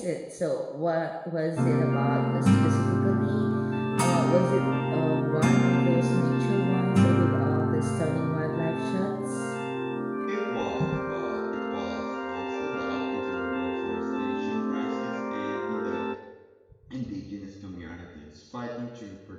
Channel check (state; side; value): identical; both; correlation 1.00